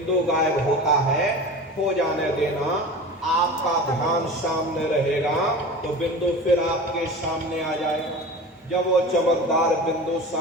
गायब होता है, हो जाने देना। आपका ध्यान सामने रहेगा तो बिंदु फिर आपके सामने आ जाएगा। जब वो चमकदार बिंदु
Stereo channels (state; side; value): normal; both; correlation 0.34